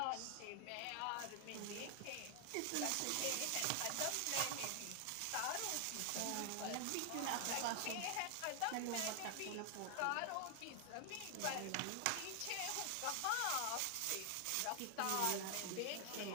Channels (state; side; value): different; both; correlation 0.00